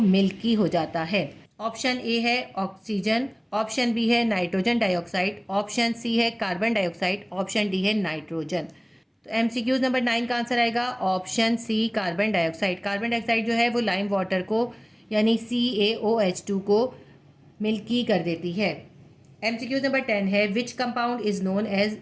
हो जाता है। ऑप्शन ए है ऑक्सीजन, ऑप्शन बी है नाइट्रोजन डाइऑक्साइड, ऑप्शन सी है कार्बन डाइऑक्साइड, ऑप्शन डी है नाइट्रोजन। तो एमसीक्यूज नंबर 9 का आंसर आएगा option C carbon dioxide. Carbon dioxide जो है वो लाइम वाटर को यानी CaOH2 को मिल्की कर देती है। एमसीक्यूज नंबर 10 है which compound is known as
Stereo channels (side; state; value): both; identical; correlation 1.00